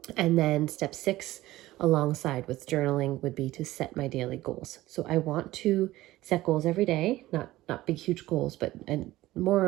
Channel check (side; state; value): left; quieter; 16.7 dB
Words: And then step 6, alongside with journaling, would be to set my daily goals. So I want to set goals every day, not big, huge goals, but and more